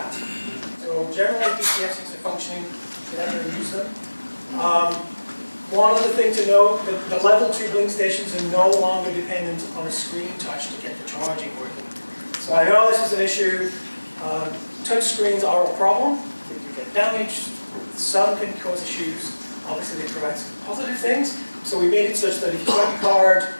So generally DCFCs are functioning, get out there and use them. One other thing to note, the level 2 Blink stations are no longer dependent on a screen touch to get the charging working. So I know this is an issue. Touch screens are a problem. They can get damaged. Some can cause issues. Obviously, they provide some positive things. So we made it such that if you swipe your card,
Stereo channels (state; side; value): inverted; both; correlation -1.00